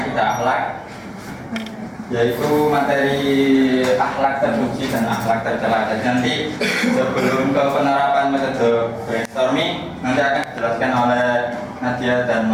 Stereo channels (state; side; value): identical; both; correlation 1.00